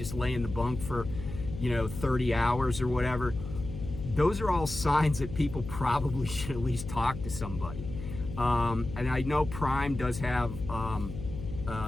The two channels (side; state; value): left; noise; hum, 9 dB below the sound